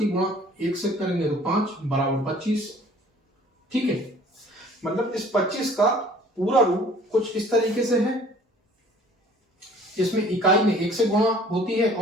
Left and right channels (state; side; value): normal; both; correlation 0.52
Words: गुणा 1 से करेंगे तो 5 बराबर 25। ठीक है, मतलब इस 25 का पूरा रूप कुछ इस तरीके से है, इसमें इकाई में 1 से गुणा होती है